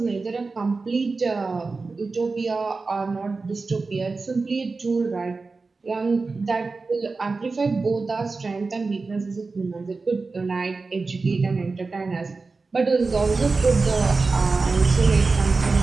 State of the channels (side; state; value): left; quieter; 4.0 dB